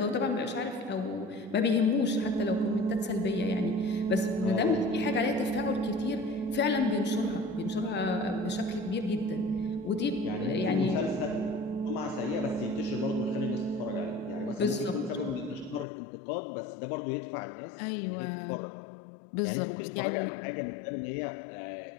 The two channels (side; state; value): right; drops out; at 15.9 s